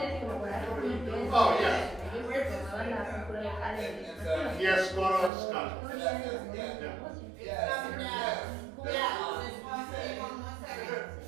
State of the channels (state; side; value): drops out; left; at 5.3 s